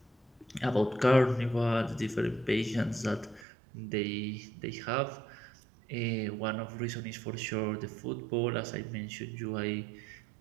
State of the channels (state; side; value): drops out; left; at 3.5 s